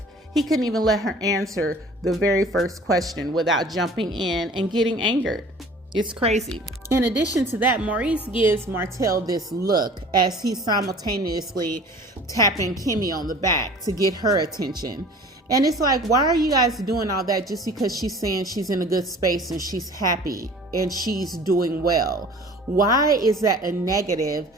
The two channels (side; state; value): both; normal; correlation 0.46